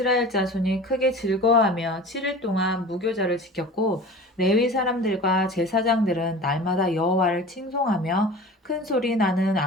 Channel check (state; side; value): normal; both; correlation 0.38